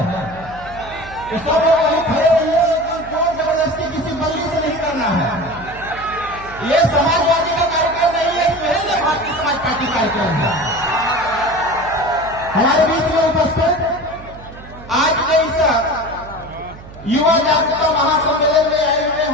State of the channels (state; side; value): noise; right; hum, 17 dB below the sound